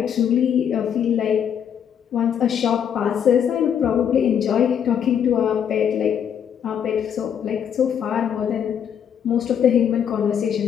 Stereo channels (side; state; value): right; quieter; 8.5 dB